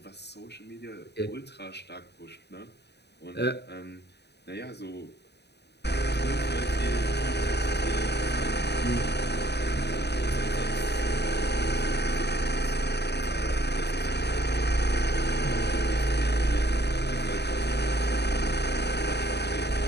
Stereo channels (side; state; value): right; late; 0.49 ms